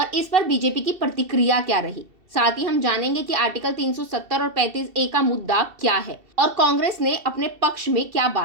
इस पर बीजेपी की प्रतिक्रिया क्या रही। साथ ही हम जानेंगे कि आर्टिकल 370 और 35A का मुद्दा क्या है और कांग्रेस ने अपने पक्ष में क्या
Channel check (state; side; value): late; left; 2.7 ms